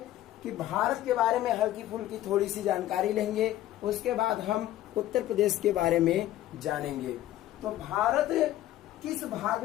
कि भारत के बारे में हल्की फुल्की थोड़ी सी जानकारी लेंगे, उसके बाद हम उत्तर प्रदेश के बारे में जानेंगे। तो भारत किस भाग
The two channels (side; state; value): right; quieter; 13.9 dB